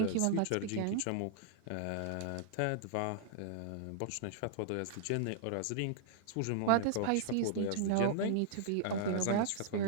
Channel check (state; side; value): different; both; correlation -0.01